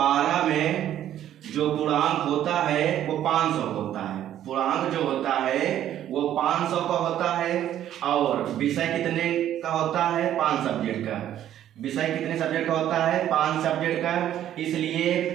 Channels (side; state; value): left; quieter; 11.5 dB